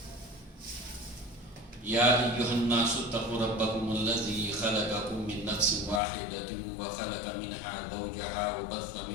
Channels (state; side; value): drops out; right; at 6.0 s